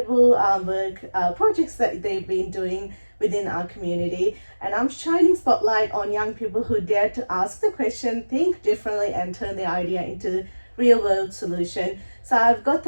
work projects that they've been doing within our community. And I'm shining spotlight on young people who dare to ask the question, think differently, and turn the idea into real world solution. So I've got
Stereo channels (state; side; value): inverted; both; correlation -1.00